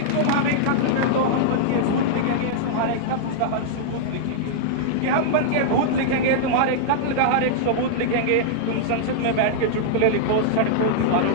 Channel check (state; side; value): different; both; correlation -0.02